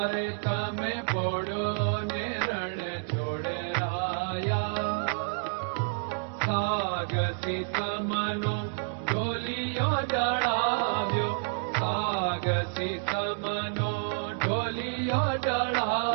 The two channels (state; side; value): silent; left; digital silence